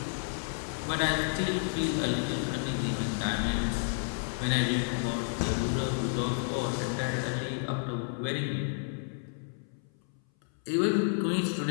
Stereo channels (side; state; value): right; silent; 57 dB below the other